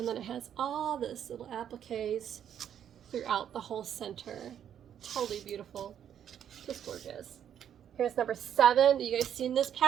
then it has all this little appliques throughout the whole center. Totally beautiful. Just gorgeous. Here's number 7. You guys seen this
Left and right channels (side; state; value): left; quieter; 9.4 dB